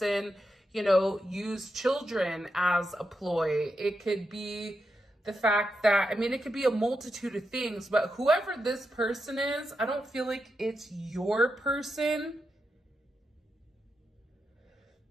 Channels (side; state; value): both; normal; correlation 0.86